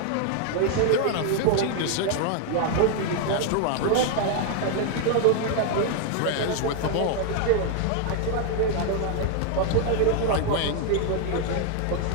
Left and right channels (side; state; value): both; different; correlation 0.00